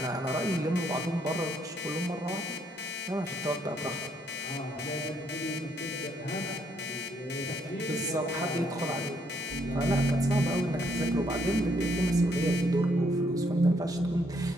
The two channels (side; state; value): both; normal; correlation 0.71